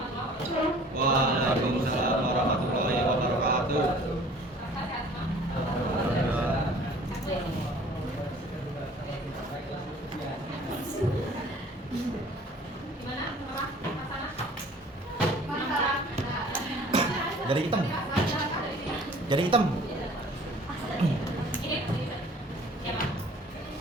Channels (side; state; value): both; normal; correlation 0.50